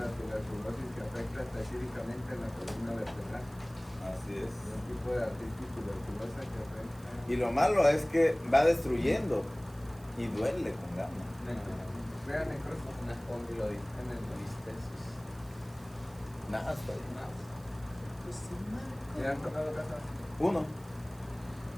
la tuberculosis que afecta específicamente en la columna vertebral. Así es. Es un tipo de artritis tuberculosa que afecta. Y lo malo es que va destruyendo y duele con ganas. Vean necrosis. una espondilolistesis. Nada, está bien. ¿Le han tocado casos? Uno.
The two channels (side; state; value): right; noise; hiss, 24 dB below the sound